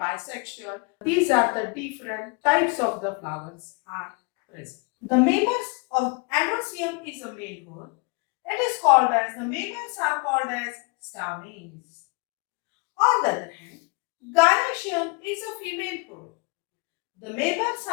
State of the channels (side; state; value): right; quieter; 31.6 dB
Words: these are the different types of the flowers are present. The mamers of androecium is a male whole. It is called as, the mamers are called as stamens. On the other hand, gynoecium is a female whole. The mamers